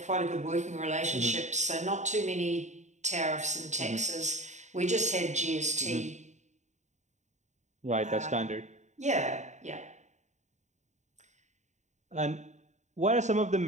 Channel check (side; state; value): left; late; 0.34 ms